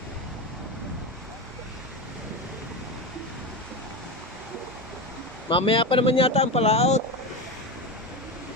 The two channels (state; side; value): normal; both; correlation 0.20